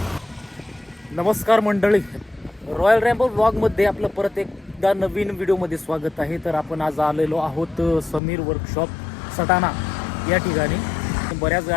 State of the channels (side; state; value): right; drops out; at 8.2 s